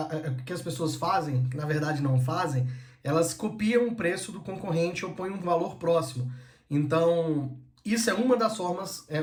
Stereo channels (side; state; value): both; identical; correlation 1.00